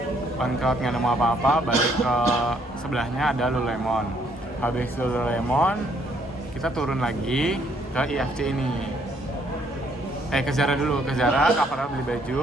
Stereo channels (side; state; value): both; normal; correlation 0.68